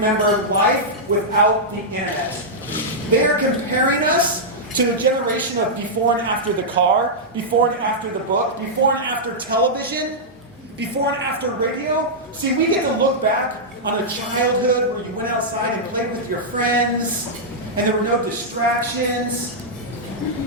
life without the internet. They are comparing us to a generation of before and after the car, before and after the book, before and after television, before and after radio. See, we get to look back on a childhood where you went outside and played with your friends, and there were no distractions.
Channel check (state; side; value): normal; both; correlation -0.09